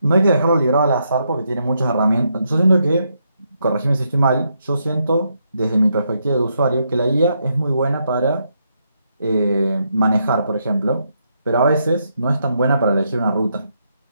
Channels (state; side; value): inverted; both; correlation -0.79